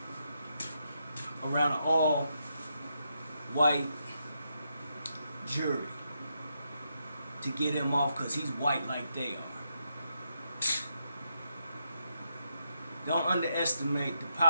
around an all white jury to get him off because he's white like they are. Don't underestimate the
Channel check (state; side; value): inverted; both; correlation -0.81